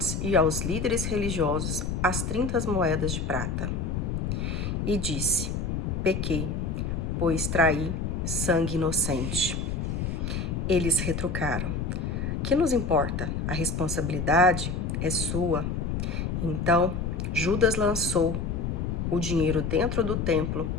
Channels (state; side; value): noise; left; rumble, 2 dB below the sound